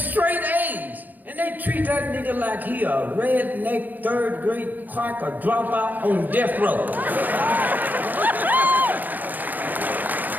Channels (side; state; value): left; late; 0.084 ms